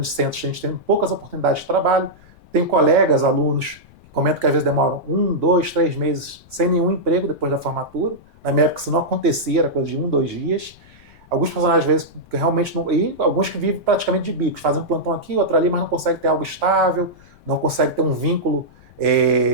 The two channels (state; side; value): noise; left; rumble, 26 dB below the sound